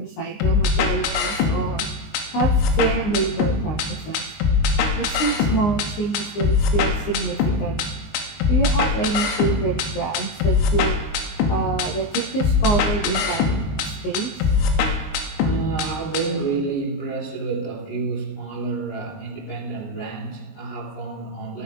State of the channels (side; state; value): right; late; 19 ms